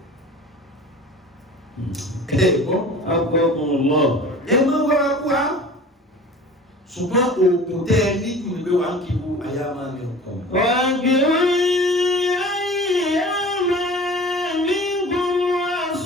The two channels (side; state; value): both; normal; correlation 0.41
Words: ẹ gbọ́ agbọ́gbọ́n lọ ẹ má wá wá ṣùgbọ́n oògùn tẹ́ ẹ níjù ní pé wà ń kí wo àyà máa mi kàn. wà á gbé ayé máa ní gbogbo